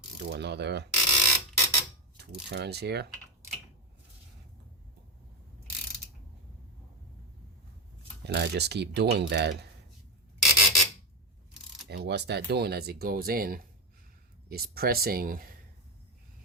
do another 2 turns here, and I just keep doing that. And what's that doing as it goes in is pressing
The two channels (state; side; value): normal; both; correlation 0.10